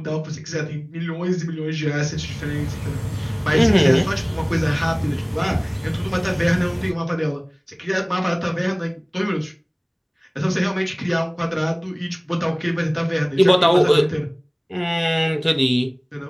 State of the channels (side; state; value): both; identical; correlation 1.00